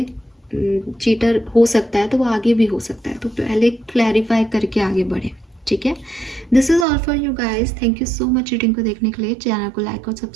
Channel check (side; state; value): left; drops out; at 6.9 s